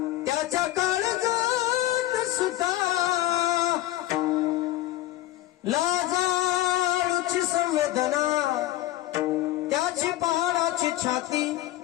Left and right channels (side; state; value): right; quieter; 15.6 dB